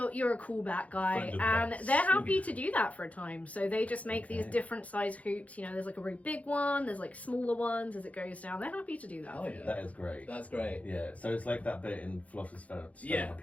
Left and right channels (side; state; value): right; late; 0.067 ms